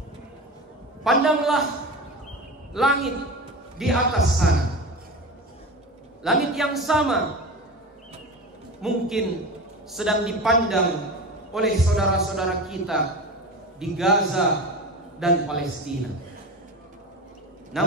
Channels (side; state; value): both; normal; correlation 0.28